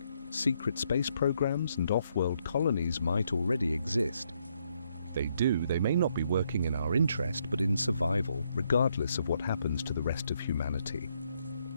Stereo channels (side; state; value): both; inverted; correlation -0.74